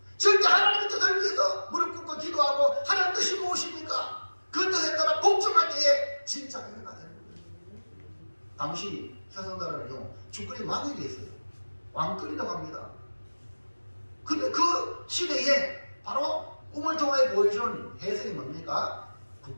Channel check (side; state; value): both; inverted; correlation -1.00